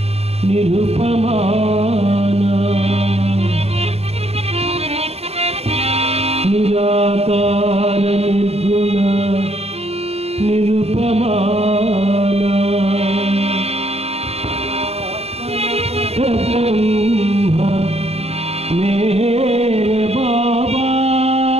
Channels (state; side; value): late; left; 0.30 ms